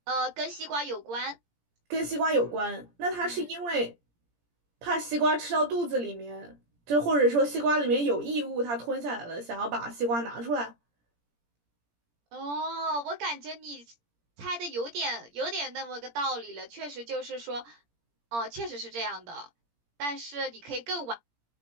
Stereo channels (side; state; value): left; late; 17 ms